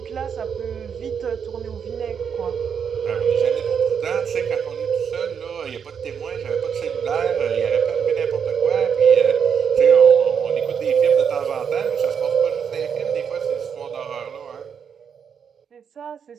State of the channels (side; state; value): left; quieter; 7.2 dB